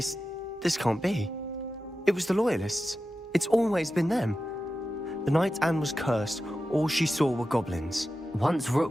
can't be. It was the loyalists. It's always been them. The night Anne was cursed, all she saw were goblins. Once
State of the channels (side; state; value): both; normal; correlation 0.92